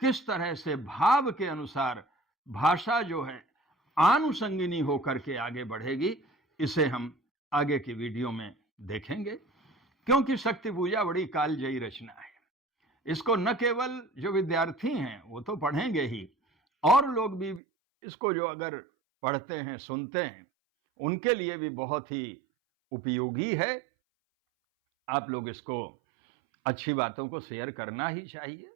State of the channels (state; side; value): drops out; left; at 17.6 s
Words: किस तरह से भाव के अनुसार भाषा जो है आनुषंगिनी होकर के आगे बढ़ेगी, इसे हम आगे की वीडियो में देखेंगे। क्योंकि शक्ति पूजा बड़ी कालजयी रचना है। इसको न केवल जो विद्यार्थी हैं वो तो पढ़ेंगे ही, और लोग भी इसको जो अगर पढ़ते हैं, सुनते हैं, उनके लिए भी बहुत ही उपयोगी है। आप लोग इसको, अच्छी बातों को शेयर करना ही चाहिए।